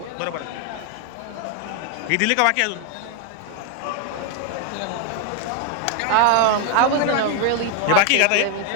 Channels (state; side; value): different; both; correlation 0.01